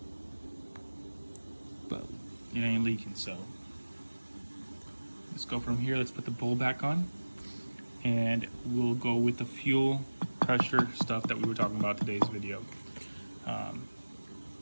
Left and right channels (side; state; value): both; inverted; correlation -1.00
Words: But it ain't leaking, so. Let's go from here. Let's put the bowl back on. And we'll go with the fuel pressure stuff that we were talking about today's video.